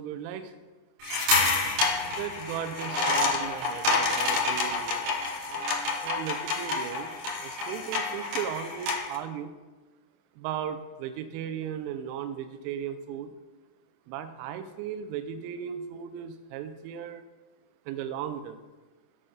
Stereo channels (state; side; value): late; left; 27 ms